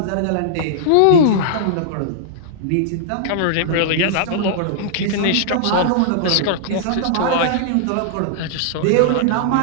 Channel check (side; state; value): both; different; correlation -0.01